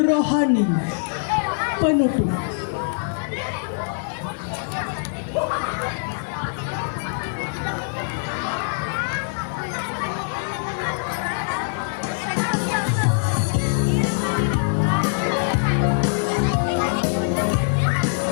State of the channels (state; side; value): silent; right; 63 dB below the other